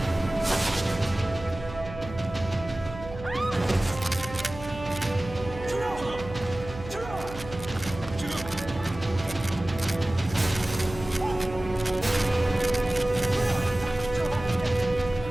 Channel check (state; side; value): noise; right; hum, 13 dB below the sound